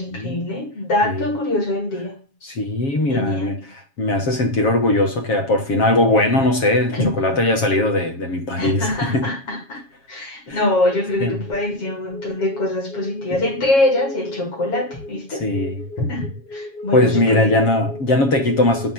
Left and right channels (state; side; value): late; right; 7.3 ms